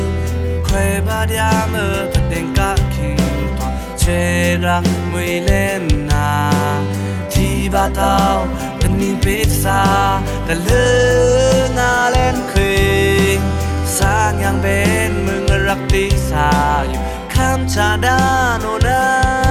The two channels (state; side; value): identical; both; correlation 1.00